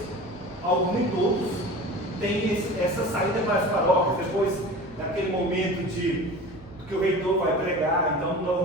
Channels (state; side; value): noise; right; hum, 23 dB below the sound